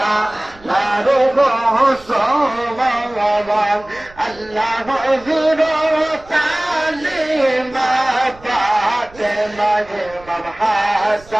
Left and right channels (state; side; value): noise; right; rumble, 23 dB below the sound